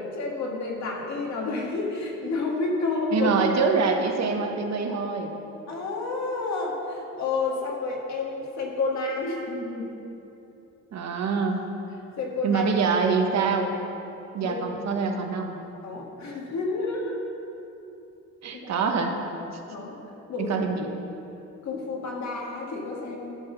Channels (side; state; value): both; normal; correlation 0.17